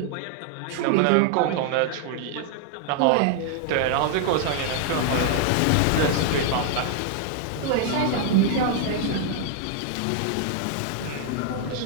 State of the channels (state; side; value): different; both; correlation 0.00